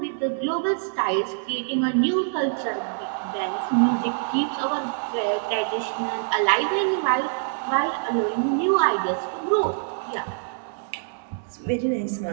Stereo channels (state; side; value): silent; left; digital silence